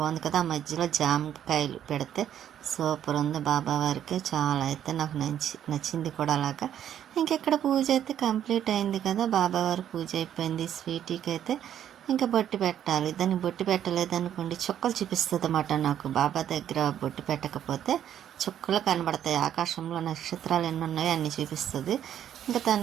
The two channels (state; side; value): quieter; left; 10.3 dB